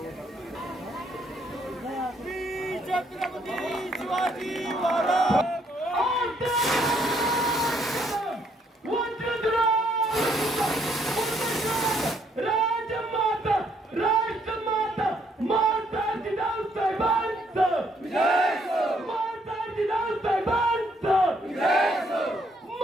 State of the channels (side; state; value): both; normal; correlation 0.69